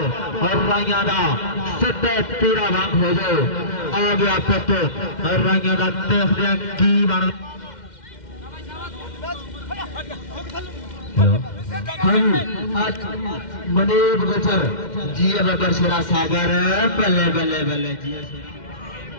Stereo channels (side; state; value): right; late; 2.1 ms